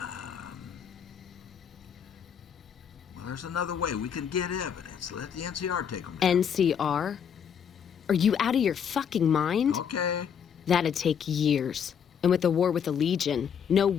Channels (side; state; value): right; quieter; 7.7 dB